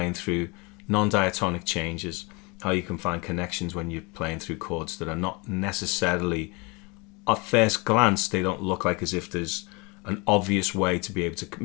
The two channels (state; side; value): quieter; right; 28.3 dB